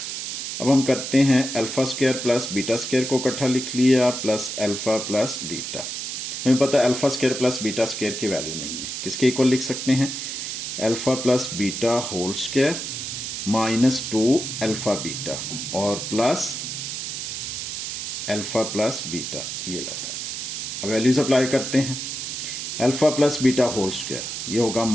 अब हम करते हैं alpha square plus beta square को इकट्ठा लिख लिया प्लस अल्फा प्लस बीटा। हमें पता है alpha square plus beta square की वैल्यू नहीं है, किसके इक्वल लिख सकते हैं, alpha plus beta whole square minus 2 alpha beta और प्लस अल्फा प्लस बीटा, ये लाता है। अब वैल्यूज अप्लाई करते हैं, alpha plus beta whole square ये होगा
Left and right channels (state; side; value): noise; right; hiss, 5 dB below the sound